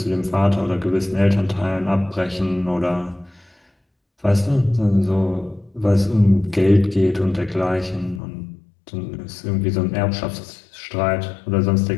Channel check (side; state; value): right; drops out; at 8.2 s